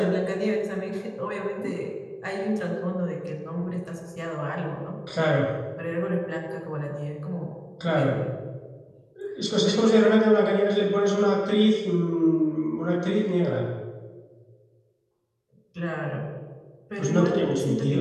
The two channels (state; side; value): identical; both; correlation 1.00